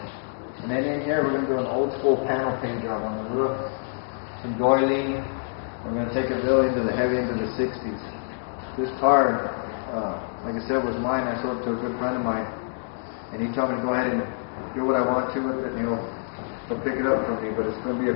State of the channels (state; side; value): silent; right; digital silence